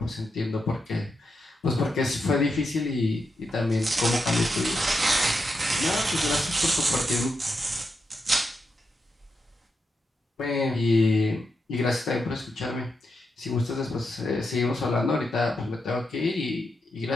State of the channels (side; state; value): both; normal; correlation 0.85